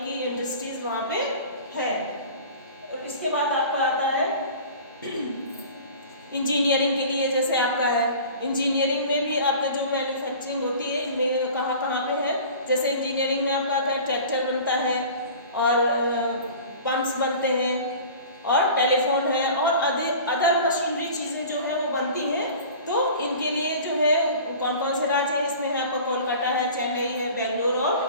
की इंडस्ट्रीज वहाँ पे है। और इसके बाद आपका आता है इंजीनियरिंग के लिए, जैसे आपका है इंजीनियरिंग में भी आपका जो मैन्युफैक्चरिंग होती है इनमें कहाँ कहाँ पे है, जैसे इंजीनियरिंग में आपका क्या ट्रैक्टर बनता है और पंप्स बनते हैं और टेलीफोन है और अदर मशीनरी चीज़ें जो है वो बनती हैं। तो इनके लिए जो है कौन कौन से राज्य हैं, इसमें है आपका कोलकाता है, चेन्नई है, बेंगलोर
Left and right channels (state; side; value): inverted; both; correlation -0.41